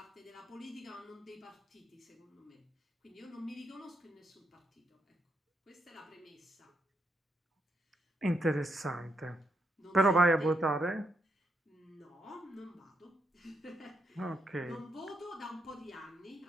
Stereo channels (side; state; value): both; normal; correlation 0.78